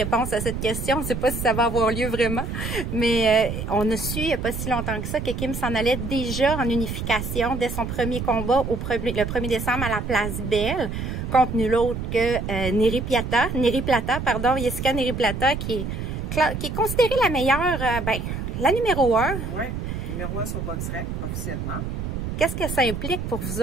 à cette question. On ne sait pas si ça va avoir lieu vraiment. Mais on a su, il n'y a pas si longtemps que ça, que Kim s'en allait déjà en unification dès son premier combat le 1er décembre à la Place Belle, contre nul autre que Neri Plata, Jessica Neri Plata, qui est considérée la meilleure, la numéro 1. Oui, numéro 1 sur BoxRec, officiellement. Qu'est-ce que ça implique pour vous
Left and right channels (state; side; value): noise; right; rumble, 5 dB below the sound